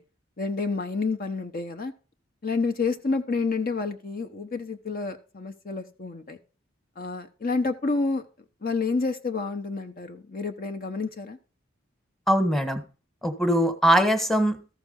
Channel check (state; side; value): normal; both; correlation 0.70